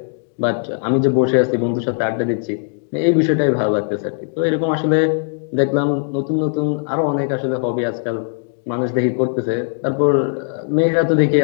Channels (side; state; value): right; silent; 61 dB below the other